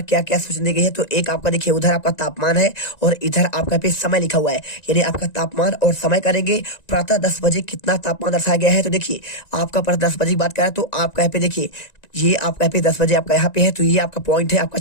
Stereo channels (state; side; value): late; right; 1.9 ms